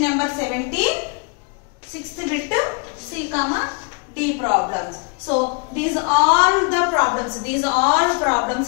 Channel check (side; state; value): right; quieter; 33.4 dB